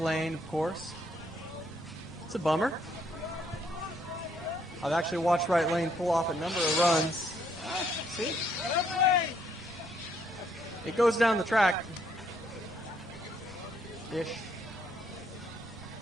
of course. It's a bummer. I've actually watched Right Lane pull off a number of runs. See? It goes down the track. Ish.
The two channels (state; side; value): normal; both; correlation 0.70